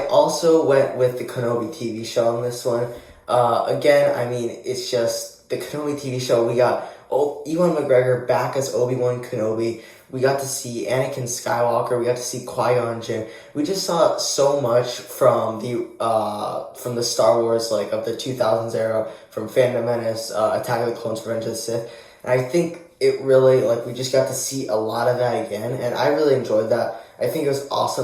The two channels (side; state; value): both; identical; correlation 1.00